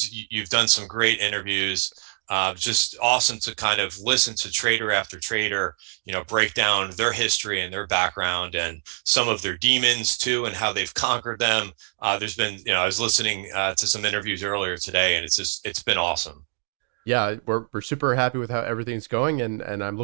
you've done some great interviews. Just awesome to kind of listen to trader after trader, break down their history and their background and some of their demons too, and how they've conquered them. There's been, I was listening to some interviews earlier today, and it's been awesome. Yeah, we're super happy with how everything's going, and I'm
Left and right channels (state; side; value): silent; left; digital silence